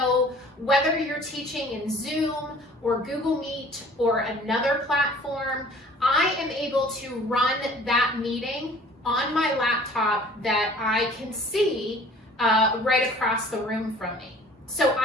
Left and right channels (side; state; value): both; normal; correlation 0.50